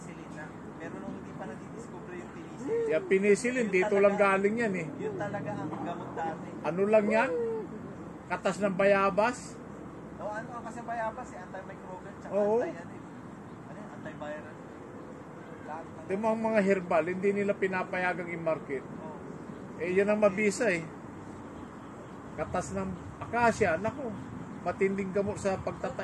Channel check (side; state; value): both; identical; correlation 1.00